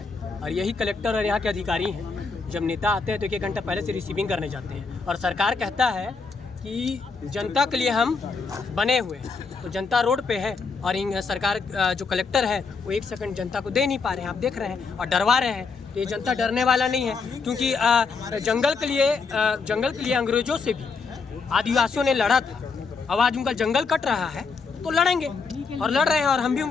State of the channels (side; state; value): right; quieter; 4.8 dB